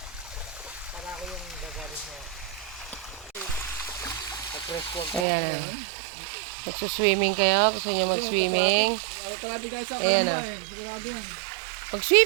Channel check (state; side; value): drops out; left; at 5.2 s